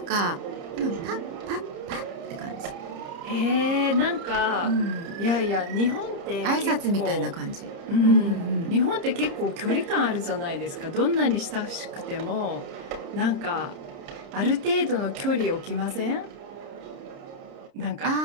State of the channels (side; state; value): left; late; 30 ms